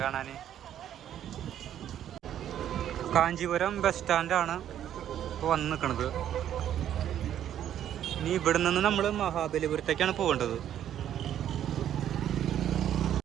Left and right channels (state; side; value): quieter; left; 10.6 dB